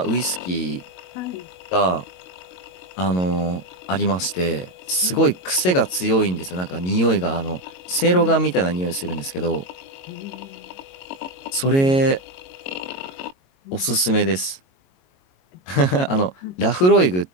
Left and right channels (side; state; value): right; late; 22 ms